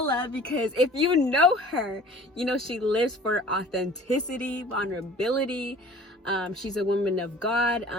because if you know her, you know she lives for authenticity, vulnerability. She's a woman of God.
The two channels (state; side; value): normal; both; correlation 0.47